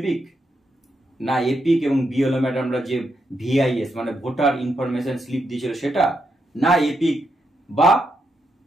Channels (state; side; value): normal; both; correlation 0.82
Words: না, এপিক এবং বিএলও ম্যাডামরা যে ভিআইএস মানে ভোটার ইনফরমেশন স্লিপ দিয়েছিল সেটা, না এপিক বা